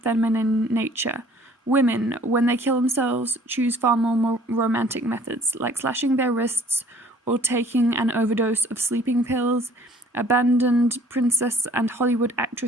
nature. Women, when they kill themselves, choose far more romantic methods, like slashing their wrists or taking an overdose of sleeping pills. Abandoned princess and Hollywood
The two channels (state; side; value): normal; both; correlation 0.55